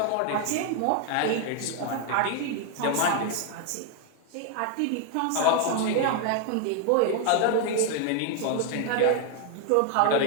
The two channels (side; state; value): both; different; correlation 0.01